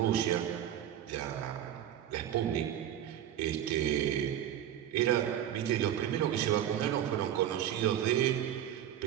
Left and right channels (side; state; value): left; quieter; 10.9 dB